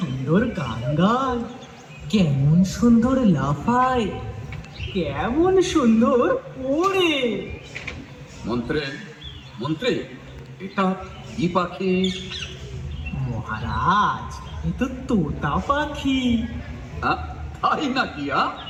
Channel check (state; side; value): identical; both; correlation 1.00